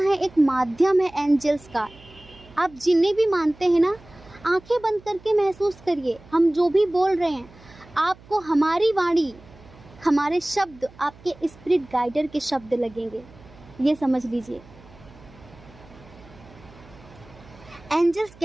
एक माध्यम है एंजल्स का। आप जिन्हें भी मानते हैं ना, आंखें बंद करके महसूस करिए, हम जो भी बोल रहे हैं आपको हमारी वाणी, हमारे शब्द आपके स्पिरिट गाइडर के शब्द लगेंगे। ये समझ लीजिए। एंजल्स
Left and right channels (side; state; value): right; noise; hum, 23 dB below the sound